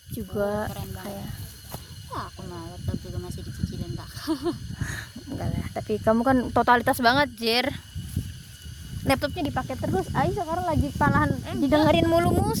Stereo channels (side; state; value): both; identical; correlation 1.00